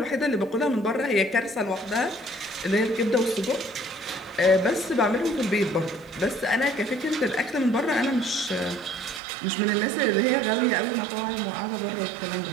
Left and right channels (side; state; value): left; drops out; at 9.2 s